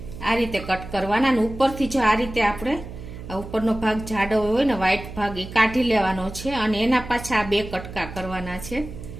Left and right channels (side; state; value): right; noise; hum, 12 dB below the sound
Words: આ રીતે કટ કરવાના અને ઉપરથી જો આ રીતે આપણે ઉપરનો ભાગ જાડો હોય ને વ્હાઈટ ભાગ એ કાઢી લેવાનો છે અને એના પાછા આ બે કટકા કરવાના છે,